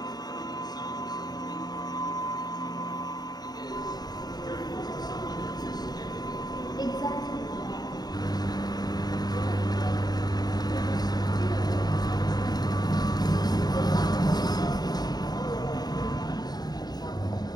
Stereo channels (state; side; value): late; right; 0.19 ms